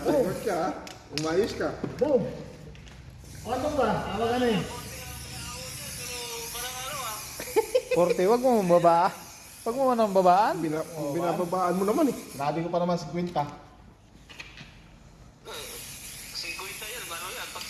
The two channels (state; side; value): identical; both; correlation 1.00